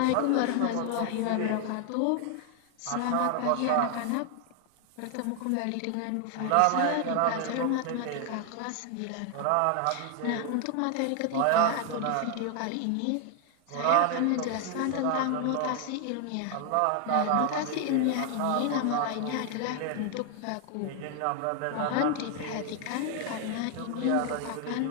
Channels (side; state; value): both; different; correlation 0.00